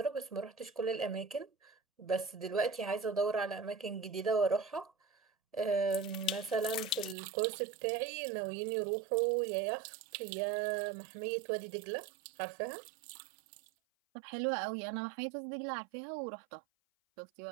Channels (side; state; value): left; drops out; at 7.2 s